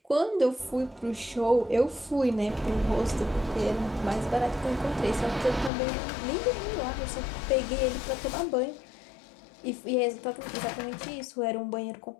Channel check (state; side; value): drops out; right; at 5.7 s